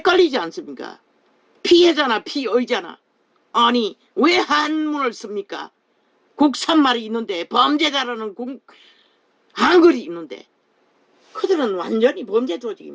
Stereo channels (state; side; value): identical; both; correlation 1.00